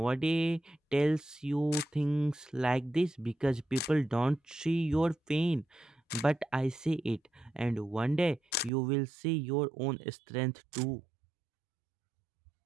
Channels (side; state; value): left; drops out; at 8.7 s